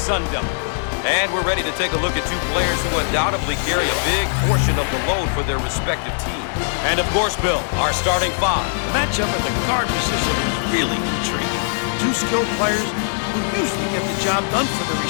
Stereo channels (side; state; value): right; silent; digital silence